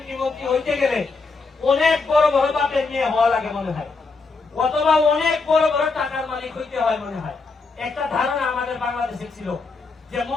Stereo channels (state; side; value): quieter; right; 4.1 dB